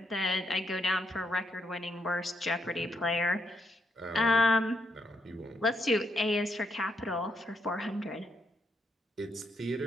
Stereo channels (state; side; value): normal; both; correlation 0.78